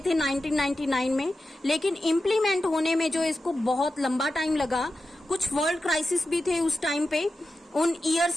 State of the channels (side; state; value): both; normal; correlation 0.91